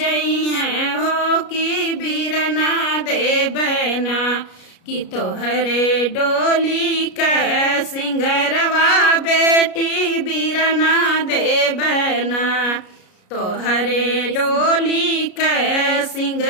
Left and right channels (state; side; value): late; right; 33 ms